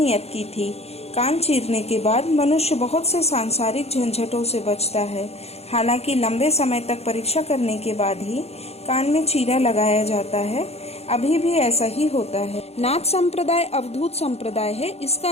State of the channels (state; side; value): late; right; 0.30 ms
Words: की थी। कान चीरने के बाद मनुष्य बहुत से सांसारिक झंझटों से बचता है। हालांकि लंबे समय तक परीक्षा करने के बाद ही कान में चीरा लगाया जाता है। अभी भी ऐसा ही होता है। नाथ संप्रदाय अवधूत संप्रदाय है। इसका